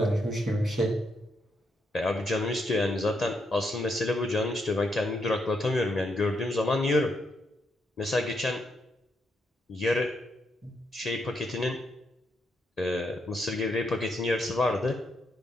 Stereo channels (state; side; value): normal; both; correlation 0.78